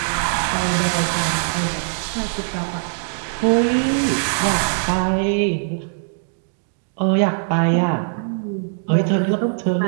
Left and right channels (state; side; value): silent; left; 58 dB below the other